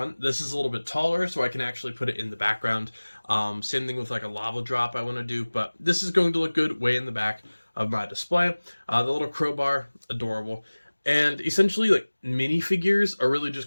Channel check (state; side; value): inverted; both; correlation -1.00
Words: This is a little bit taller, so I can actually put it in the background. Same thing with like a lava drop I want to do, but this is going to look good way in the back of my display. The little crowbar, adorable. And essentially, like, minifigures are really just